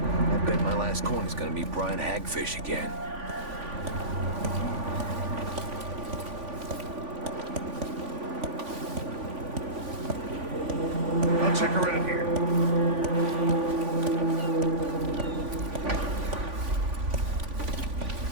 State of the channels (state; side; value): late; left; 3.5 ms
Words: I bet my last coin is gonna meet Brian Hagfish again. I'll check around here.